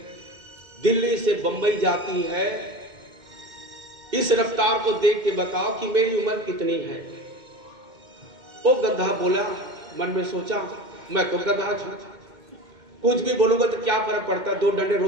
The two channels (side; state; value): left; late; 2.2 ms